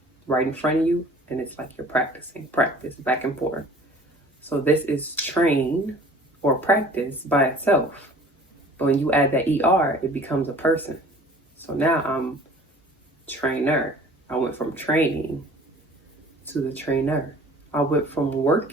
right in front of you, and it's like you're practicing, practice back and forth. So this is train or practice by itself. But when you add that ER, it becomes a person. So now I'm trainer. I went from training to the trainer. I went from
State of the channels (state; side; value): normal; both; correlation 0.48